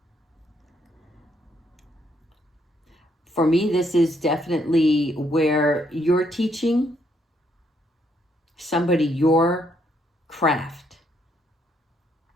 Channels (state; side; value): normal; both; correlation 0.73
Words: For me, this is definitely where you're teaching somebody your craft.